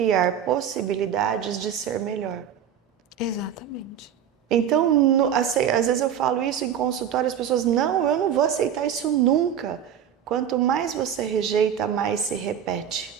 possibilidades de ser melhor. Exatamente. Então, às vezes eu falo isso em consultório, as pessoas, não, eu não vou aceitar isso nunca. Quanto mais você rejeita, mais se repete.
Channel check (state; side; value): quieter; left; 8.9 dB